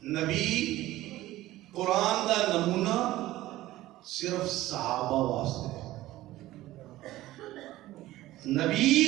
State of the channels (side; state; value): left; quieter; 16.2 dB